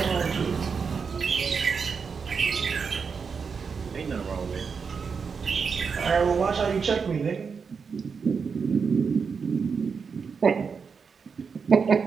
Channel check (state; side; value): quieter; left; 5.7 dB